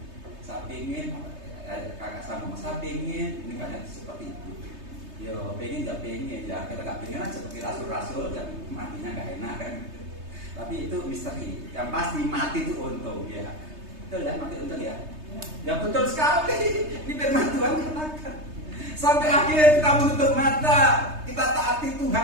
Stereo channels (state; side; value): late; left; 3.3 ms